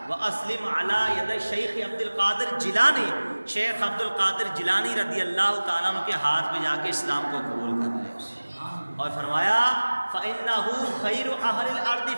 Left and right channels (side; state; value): both; inverted; correlation -1.00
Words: واسلم علی ید شیخ عبد القادر جیلانی، شیخ عبد القادر جیلانی رضی اللہ تعالیٰ عنہ کے ہاتھ پہ جا کے اسلام کو قبول کر لے۔ اور فرمایا فإنہ خیر اہل الارض